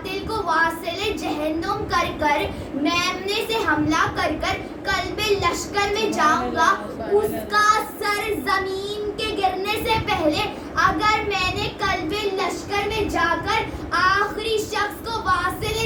کو واصل جہنم کر میمنے سے حملہ کر قلب لشکر میں جاؤں گا. اس کا سر زمین کے گرنے سے پہلے اگر میں نے قلب لشکر میں جا کر آخری شخص کو واصل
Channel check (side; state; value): both; identical; correlation 1.00